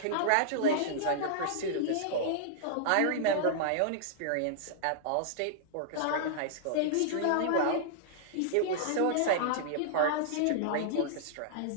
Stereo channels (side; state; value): both; different; correlation -0.01